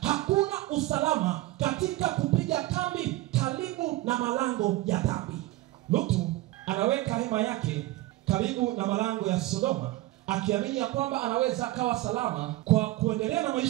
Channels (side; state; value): left; quieter; 17.7 dB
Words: hakuna usalama katika kupiga kambi karibu na malango ya dhambi. Lutu anaweka hema yake karibu na malango ya Sodoma, akiamini ya kwamba anaweza akawa salama kwa kuendelea na